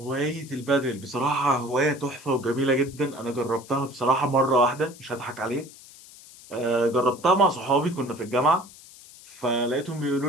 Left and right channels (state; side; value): noise; left; hiss, 20 dB below the sound